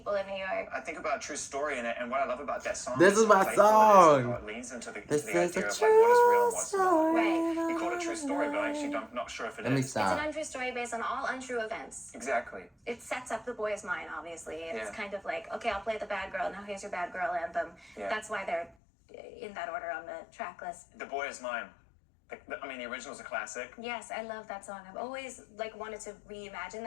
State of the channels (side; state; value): right; drops out; at 18.7 s